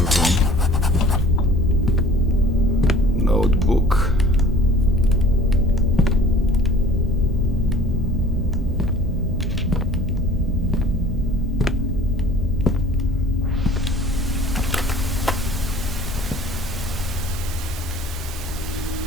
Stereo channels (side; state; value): both; normal; correlation 0.49